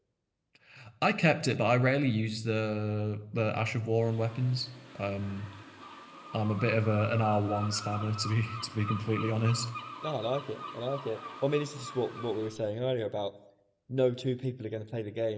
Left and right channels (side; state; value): both; identical; correlation 1.00